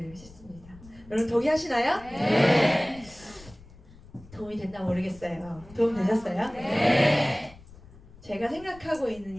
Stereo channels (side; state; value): left; noise; rumble, 21 dB below the sound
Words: 싶습니다. 여러분 동의하시나요? 네. 도움이 됐나 모르겠어요. 도움 되셨어요? 네. 제가 생각하고